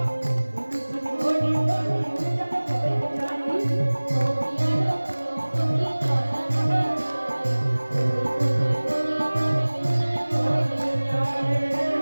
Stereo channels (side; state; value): both; inverted; correlation -1.00